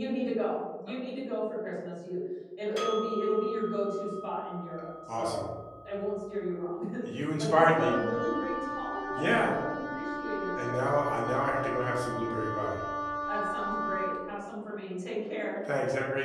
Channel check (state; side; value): identical; both; correlation 1.00